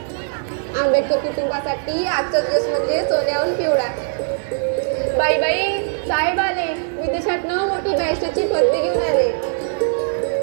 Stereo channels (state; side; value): silent; left; 62 dB below the other